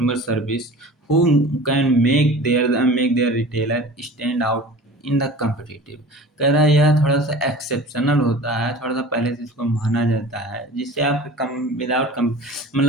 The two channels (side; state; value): both; normal; correlation 0.39